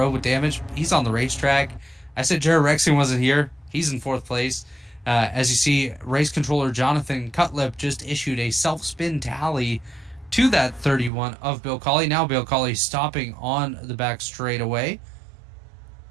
with damage. He's on the racetrack. I said Jared Rexing wasn't here. He's in 4th place. As you see, race controller Jonathan Cutlip just issued a self-spin tally to that 31 of Bill Colley. Now Bill Colley stopping on the back straightaway,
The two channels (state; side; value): drops out; left; at 11.1 s